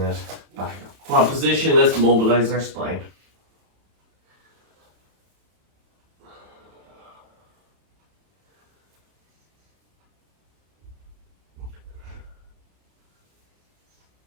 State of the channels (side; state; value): left; late; 31 ms